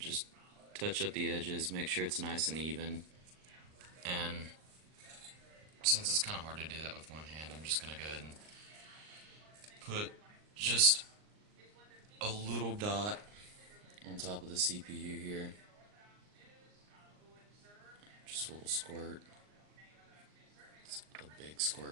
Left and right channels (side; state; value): left; late; 39 ms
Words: touch up the edges, make sure it's nice and even. And since it's kind of hard to do that with one hand, I'm just gonna go ahead and put just a little dot on top of the CPU here. Just a little squirt. It's a big